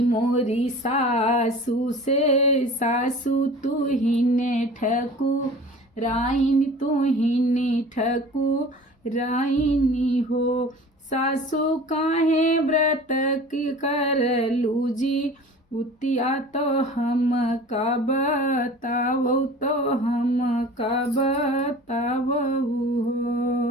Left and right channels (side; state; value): both; normal; correlation 0.41